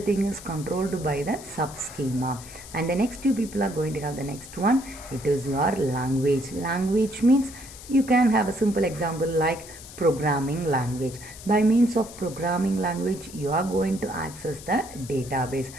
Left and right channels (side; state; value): left; noise; hiss, 16 dB below the sound